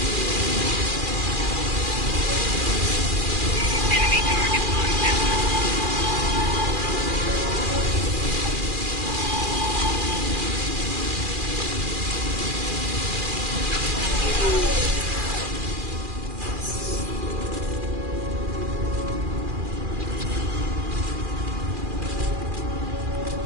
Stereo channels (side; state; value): left; late; 2.4 ms